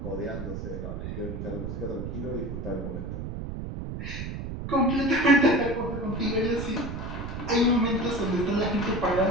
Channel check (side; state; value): right; noise; rumble, 6 dB below the sound